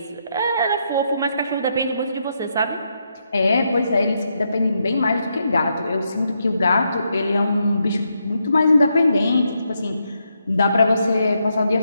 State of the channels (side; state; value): both; inverted; correlation -0.80